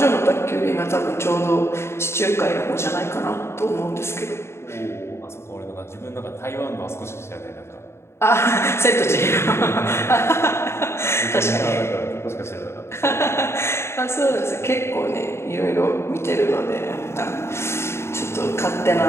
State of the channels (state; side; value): late; right; 0.13 ms